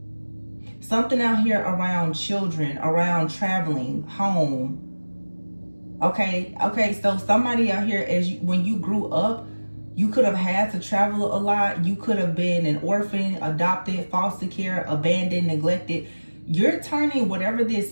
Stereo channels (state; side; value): inverted; both; correlation -1.00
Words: Something out here around children, around traveling, home. Okay, so somebody out here, when you grew up, you could have had to travel a lot. You could have been an orphan, adopted, foster care, abandoned, neglected. You're turning whatever this